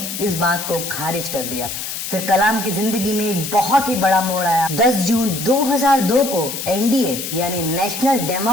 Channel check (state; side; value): noise; left; hiss, 6 dB below the sound